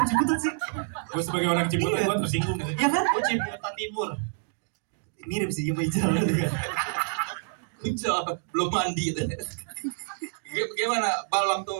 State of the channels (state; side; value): silent; left; 60 dB below the other